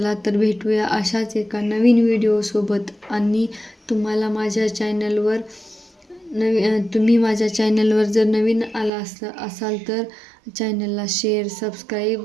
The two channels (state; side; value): drops out; left; at 8.9 s